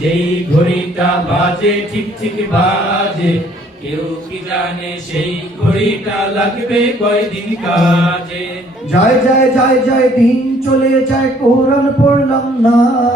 যেই ঘড়িটা বাজে ঠিক ঠিক বাজে, কেউ কি জানে সেই ঘড়িটা লাগবে কয়দিন কাজে। যায় যায় যায় যায় দিন চলে যায় কোরআন পড়লাম না,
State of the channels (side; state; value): both; normal; correlation 0.61